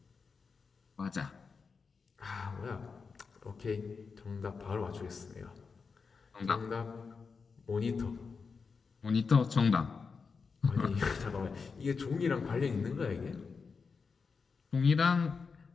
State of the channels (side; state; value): right; quieter; 5.1 dB